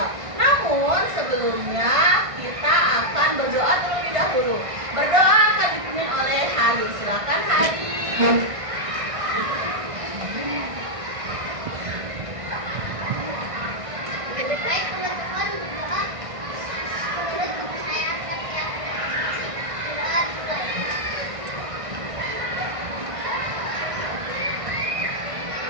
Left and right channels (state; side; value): late; left; 1.6 ms